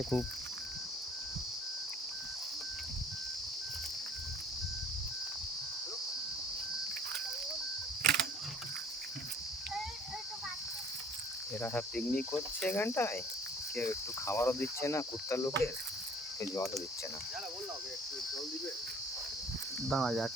খুব। এরা সব পিকনিক করছে এখানটায়, কেউ একটু খাবারও দিচ্ছে না, কুত্তার লোকের কেউ জলও দিচ্ছে না। দাঁড়া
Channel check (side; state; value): both; normal; correlation 0.53